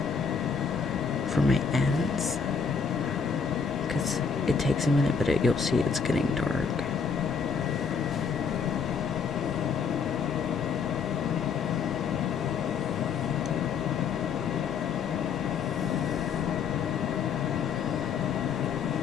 for my ends. Because it takes a minute, but you'll see it's getting dark.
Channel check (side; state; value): right; quieter; 5.8 dB